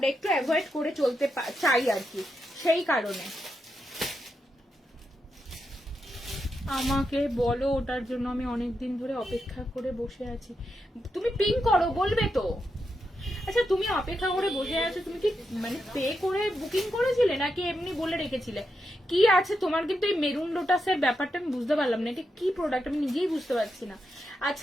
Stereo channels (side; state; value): both; normal; correlation 0.85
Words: একটু অ্যাভয়েড করে চলতে চাই আর কি, সেই কারণে। আমাকে বলো, ওটার জন্য আমি অনেকদিন ধরে অপেক্ষা করে বসে আছি। তুমি পিং করো, বলবে তো। আচ্ছা, তুমি অপেক্ষা করে বসে আছো, তুমি কি মানে পে করে বুকিং করেছিলে নাকি এমনি বলে রেখেছিলে? কি আছে তোমার? কিন্তু এই মেরুন লোটাসের ব্যাপারটা আমি বুঝতে পারলাম না, এটা কি প্রোডাক্ট আমি নিজেই বুঝতে পারছি না।